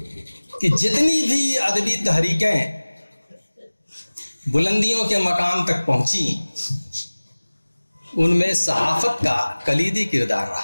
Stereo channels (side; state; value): both; inverted; correlation -1.00